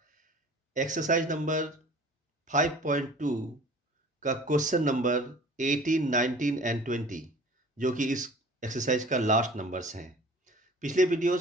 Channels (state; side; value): normal; both; correlation 0.45